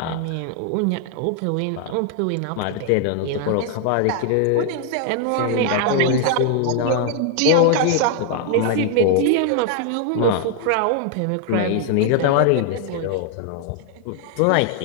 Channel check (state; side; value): different; both; correlation 0.00